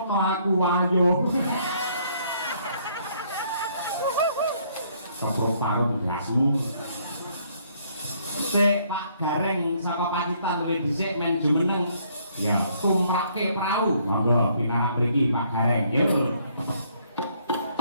aku wayuh. Keproparon gasmu. Sik Pak Gareng saka Pacitan luwih dhisik men jumeneng. Ya, tumrake prau. Monggo pinarak mriki Pak Gareng. Yo.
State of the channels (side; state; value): both; inverted; correlation -0.67